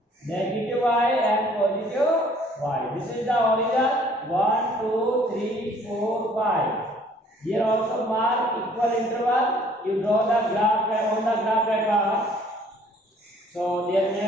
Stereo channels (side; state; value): both; normal; correlation 0.58